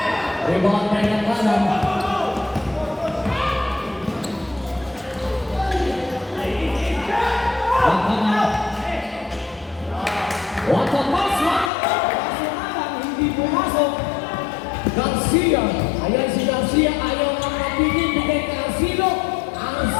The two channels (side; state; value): right; drops out; at 11.7 s